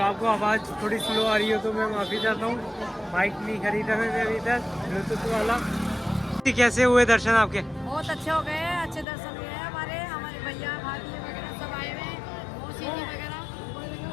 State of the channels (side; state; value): right; drops out; at 9.1 s